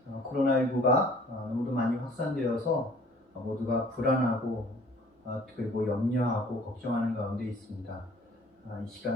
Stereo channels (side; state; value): both; normal; correlation 0.53